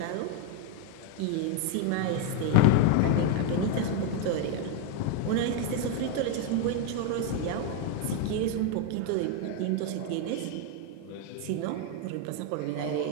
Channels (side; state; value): both; different; correlation 0.01